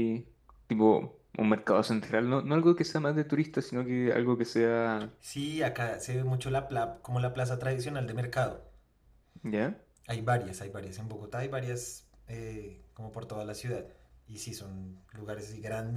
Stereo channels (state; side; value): identical; both; correlation 1.00